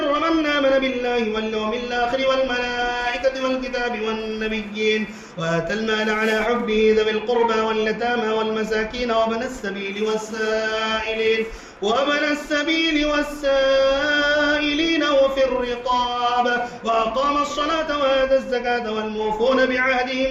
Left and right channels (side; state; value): both; identical; correlation 1.00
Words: من آمن بالله واليوم الآخر والملائكة والكتاب والنبيين وآتى المال على حبه ذوي القربى واليتامى والمساكين وابن السبيل والسائلين وفي الرقاب وأقام الصلاة وآتى الزكاة والموفون